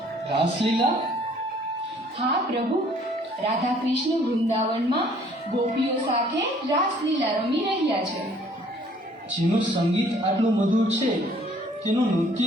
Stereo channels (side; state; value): both; normal; correlation 0.59